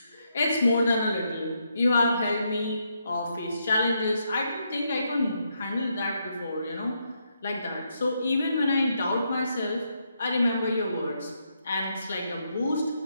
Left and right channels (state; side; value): inverted; both; correlation -0.78